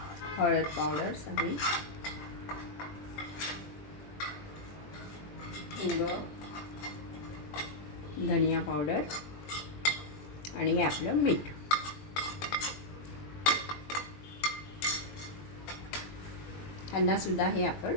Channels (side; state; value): right; late; 20 ms